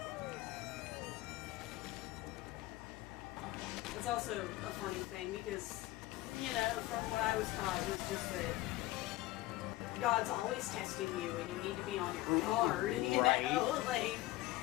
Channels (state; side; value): quieter; right; 17.3 dB